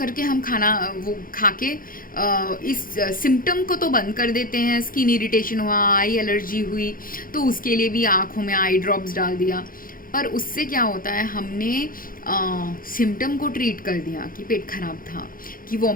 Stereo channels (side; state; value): right; late; 0.41 ms